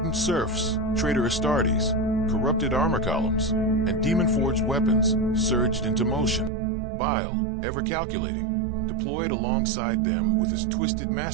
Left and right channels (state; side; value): drops out; left; at 6.5 s